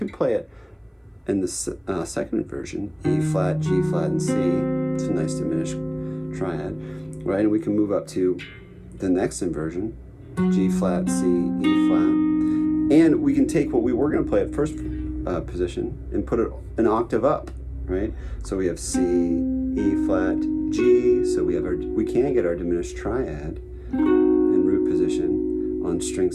play it in the second inversion, E flat, G flat, and C. It's a nice diminished triad, right? And we can move up to the next inversion, G flat, C, E flat. And we can take what we were going to play at first position and put it an octave up, right? So we have C, E flat, G. So we can get our diminished triad in root position on string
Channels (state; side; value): identical; both; correlation 1.00